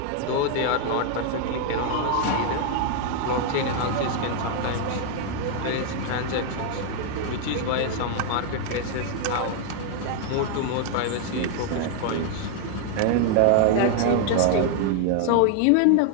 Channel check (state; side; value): different; both; correlation 0.00